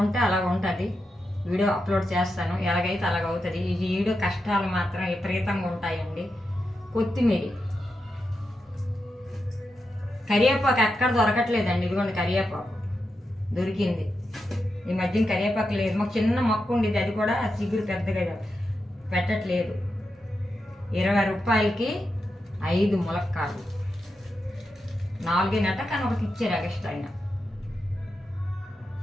అలాగ ఉంటుంది. వీడియో అప్లోడ్ చేస్తాను, ఎలాగైతే అలాగవుతుంది. ఈ వీడియో కష్టాలు మాత్రం విపరీతంగా ఉంటాయండి. కొత్తిమీర, కరివేపాకు ఎక్కడ దొరకట్లేదండి. ఇదిగోండి కరివేపాకు దొరికింది. ఈ మధ్యన కరివేపాకు లేదు. మాకు చిన్న మొక్క ఉండేది, అది కూడా చిగురు పెద్దగా పెట్టట్లేదు. 20 రూపాయలకి 5 ములక్కాడలు, 4 కానీ ఒకటి ఇచ్చారు ఎక్స్ట్రా అయినా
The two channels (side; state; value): both; normal; correlation 0.87